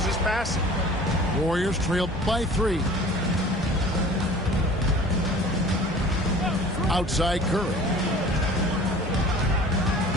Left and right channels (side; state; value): both; normal; correlation 0.45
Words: his passing. Warriors trail by 3. Outside Curry.